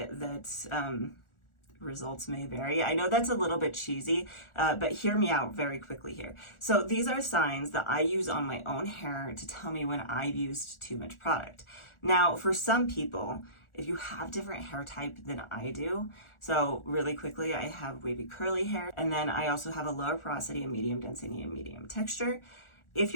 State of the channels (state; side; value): late; right; 1.4 ms